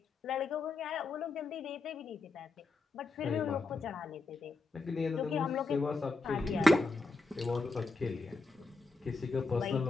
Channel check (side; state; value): right; quieter; 3.4 dB